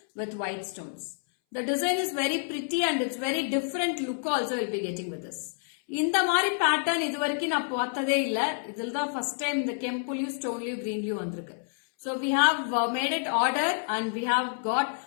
with white stones. The design is very pretty and it's very different look also will be getting with this. இந்த மாதிரி pattern இது வரைக்கும் நான் பார்த்ததே இல்ல. இதில் தான் first time இந்த கெம்புலயும் ஸ்டோன்லயும் கிரீன்லயும் வந்திருக்கு. So we have made it order and we have got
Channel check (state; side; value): silent; right; 59 dB below the other